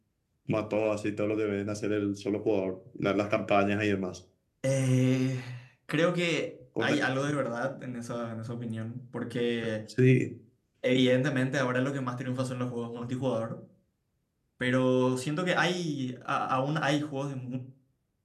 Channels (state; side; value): identical; both; correlation 1.00